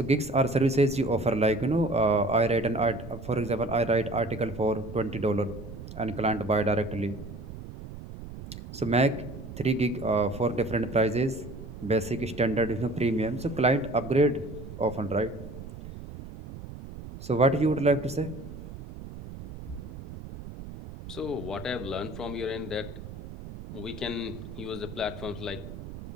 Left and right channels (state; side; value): noise; right; rumble, 12 dB below the sound